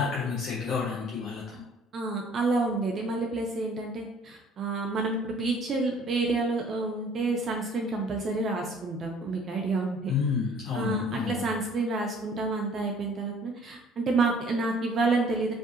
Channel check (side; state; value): both; normal; correlation 0.55